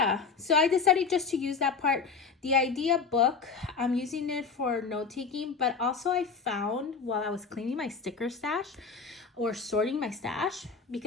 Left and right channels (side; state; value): right; quieter; 5.1 dB